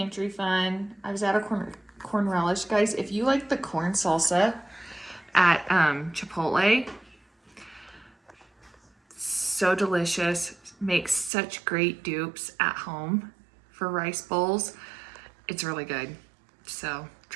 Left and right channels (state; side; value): drops out; left; at 11.3 s